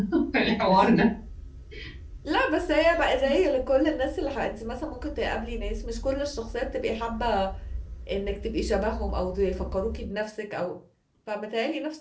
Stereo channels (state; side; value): identical; both; correlation 1.00